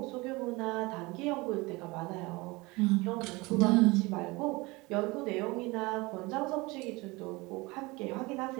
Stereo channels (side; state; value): left; quieter; 23.6 dB